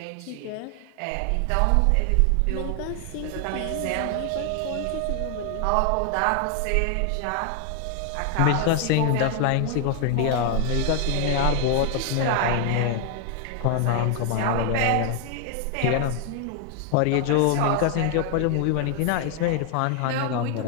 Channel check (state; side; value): different; both; correlation 0.00